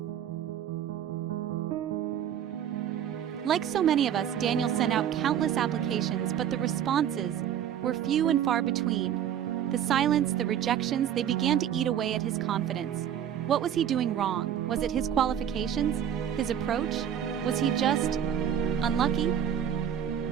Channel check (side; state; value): left; quieter; 9.6 dB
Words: Like so many of us, Daniel sent out countless applications, but the responses were few and far between. The silence, the rejections, they began to eat away at his confidence. What was he doing wrong? Was it his qualifications? His approach? Was he just unlucky?